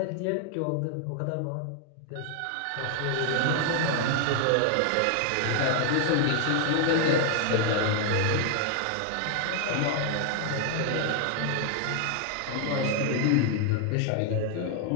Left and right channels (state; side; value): different; both; correlation 0.00